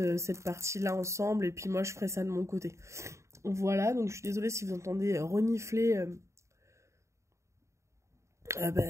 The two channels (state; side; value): late; left; 0.14 ms